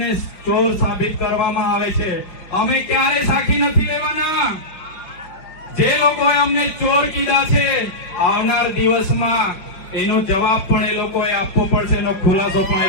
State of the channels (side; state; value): right; late; 5.2 ms